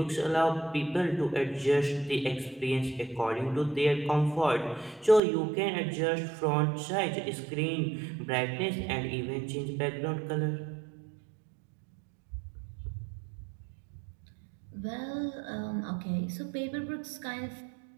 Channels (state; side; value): drops out; left; at 5.2 s